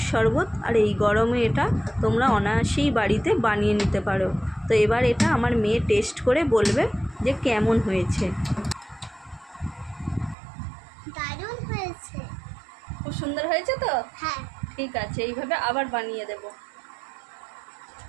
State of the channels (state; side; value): drops out; left; at 10.4 s